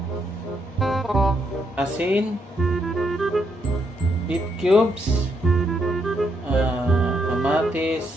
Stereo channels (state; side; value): normal; both; correlation 0.76